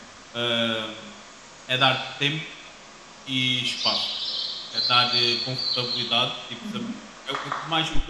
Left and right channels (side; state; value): both; identical; correlation 1.00